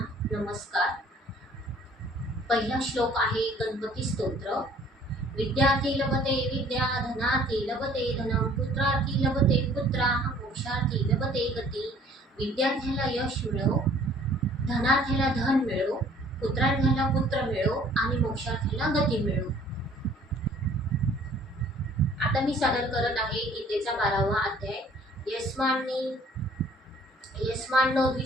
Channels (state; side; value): normal; both; correlation 0.55